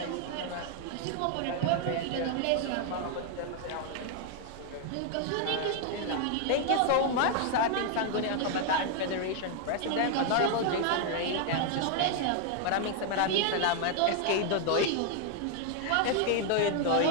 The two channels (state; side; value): different; both; correlation 0.00